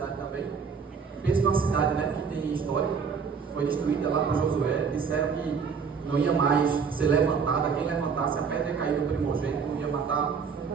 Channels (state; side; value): quieter; left; 5.9 dB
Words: também. Pensa numa cidade, né, que tem história, foi destruída lá por Josué, disseram que não ia mais ser levantada, quem levantasse a pedra ia cair no primogênito, não ia matar,